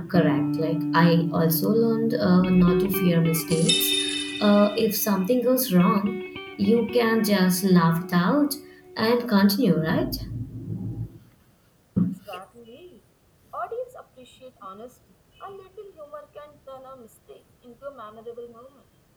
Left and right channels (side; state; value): both; identical; correlation 1.00